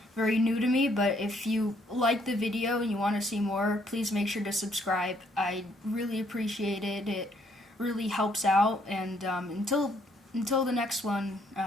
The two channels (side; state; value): both; normal; correlation 0.68